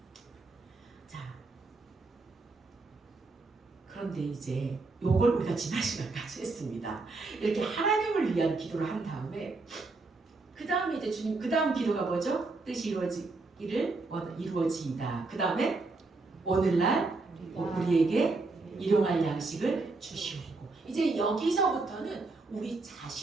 자, 그런데 이제 요걸 우리가 지난 시간까지 했습니다. 이렇게 하나님을 위한 기도를 한 다음에 그 다음에 이제 주님 그 다음 기도가 뭐죠? 뜻이 이루어지이다. 그 다음에 오늘날 우리에게 일용할 양식을 주시옵고 이제 여기서부터는 우리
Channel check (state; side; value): quieter; left; 3.6 dB